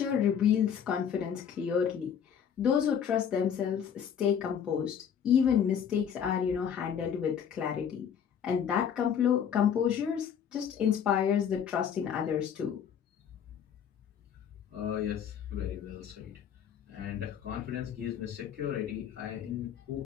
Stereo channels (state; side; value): quieter; right; 8.2 dB